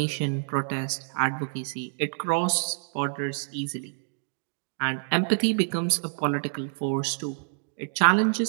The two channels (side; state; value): left; silent; digital silence